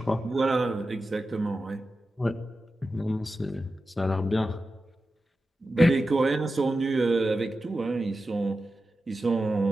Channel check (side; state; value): both; normal; correlation 0.92